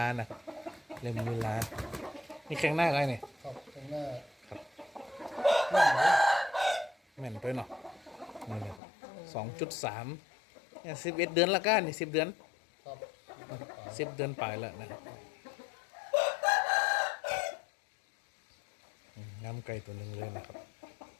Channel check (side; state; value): right; drops out; at 8.8 s